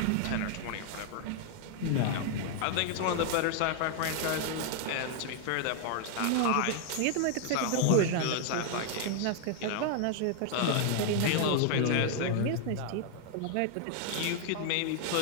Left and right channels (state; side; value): different; both; correlation 0.00